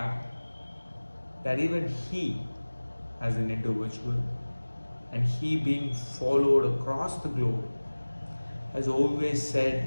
that even he, as an individual, and he being followed across the globe, has always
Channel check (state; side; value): inverted; both; correlation -1.00